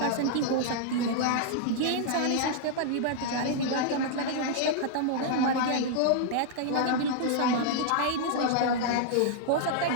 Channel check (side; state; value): both; different; correlation -0.01